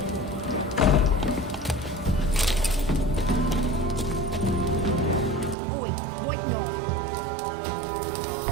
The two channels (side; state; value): left; drops out; at 5.6 s